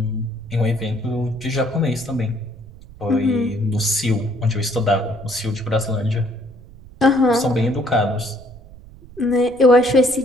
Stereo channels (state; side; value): noise; right; rumble, 20 dB below the sound